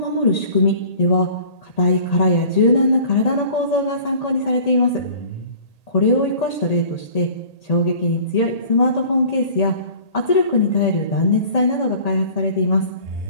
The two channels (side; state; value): right; late; 1.8 ms